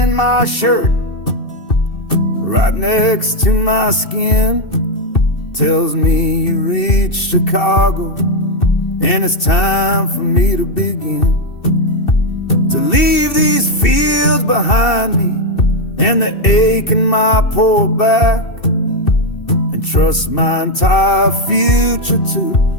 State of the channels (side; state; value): right; late; 2.7 ms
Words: my shirt, right next to my skin. Tells me you reached Chicago, and it's time for me to begin. To leave these fields behind me, and the ache in my poor back, and trust my entire future